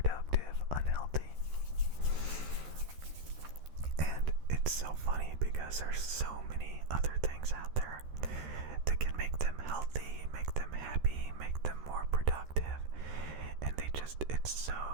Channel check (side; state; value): left; late; 13 ms